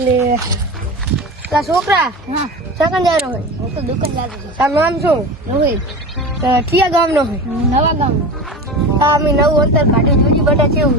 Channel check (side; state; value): both; normal; correlation 0.28